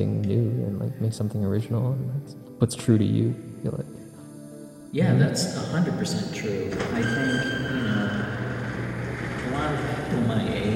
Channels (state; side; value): identical; both; correlation 1.00